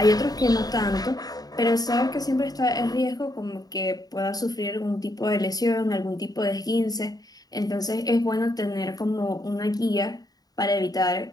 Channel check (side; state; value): right; late; 0.18 ms